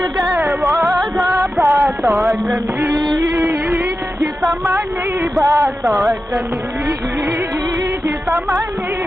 బాతాగ్రణీ హితమణి బాతాగ్రణీ హితమణి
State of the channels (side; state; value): both; normal; correlation 0.92